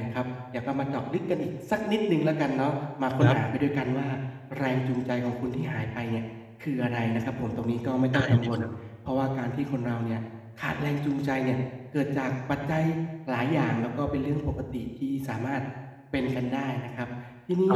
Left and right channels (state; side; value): identical; both; correlation 1.00